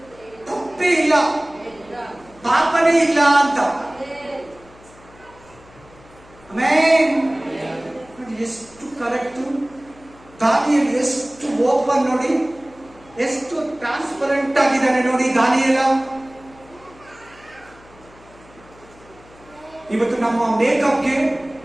ತಪ್ಪೇ ಇಲ್ಲ ಪಾಪನೇ ಇಲ್ಲ ಅಂತ ಆಮೆನ್ ನೋಡಿ ಎಷ್ಟು ಕರೆಕ್ಟ್ ದಾನಿಯೇಲ್ ಎಷ್ಟು ಓಪನ್ ನೋಡಿ ಎಷ್ಟು ಟ್ರಾನ್ಸ್ಪರೆಂಟ್ ಆಗಿದ್ದಾನೆ ನೋಡಿ ದಾನಿಯೇಲ ಇವತ್ತು ನಮ್ಮ ಮೇಕಪ್ಗೆ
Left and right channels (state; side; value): noise; left; hum, 25 dB below the sound